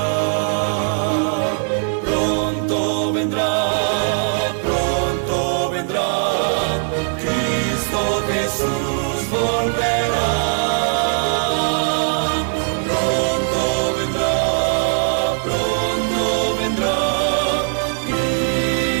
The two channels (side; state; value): left; silent; 66 dB below the other